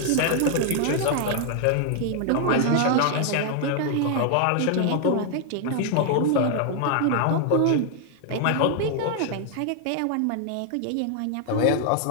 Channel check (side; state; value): both; different; correlation 0.00